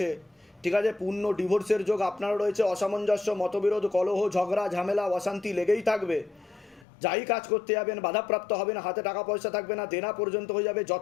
ঠিক আছে? পূর্ণ ডিভোর্সের যোগ আপনারও রয়েছে। অসামঞ্জস্য, মতবিরোধ, কলহ, ঝগড়া, ঝামেলা, অশান্তি লেগেই থাকবে। যাই কাজ করতে যাবেন বাধাপ্রাপ্ত হবেন, হাতে টাকা পয়সা থাকবে না, দেনা পর্যন্ত হয়ে যাবে,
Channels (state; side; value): drops out; right; at 6.9 s